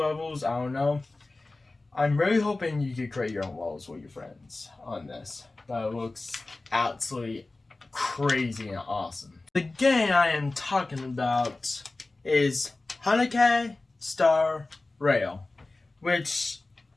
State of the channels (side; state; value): right; quieter; 3.2 dB